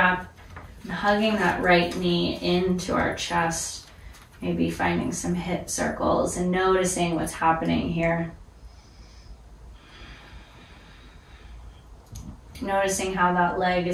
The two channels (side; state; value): both; identical; correlation 1.00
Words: and hugging that right knee into our chest. Maybe finding some hip circles and noticing what's happening here. Noticing how that leg